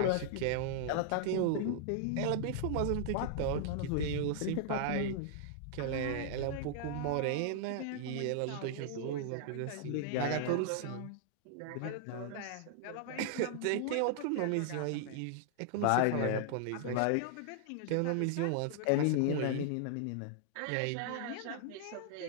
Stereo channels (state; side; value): different; both; correlation -0.01